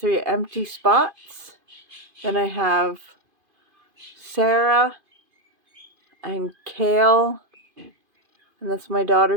empty spots. Then I have Sarah and Kale. And that's my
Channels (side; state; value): left; late; 2.5 ms